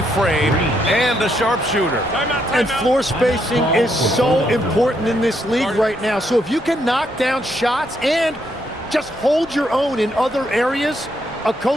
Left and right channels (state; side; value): normal; both; correlation 0.76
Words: frame and a sharpshooter. And floor spacing is so important in this league right now. So if you can knock down shots and just hold your own in other areas, a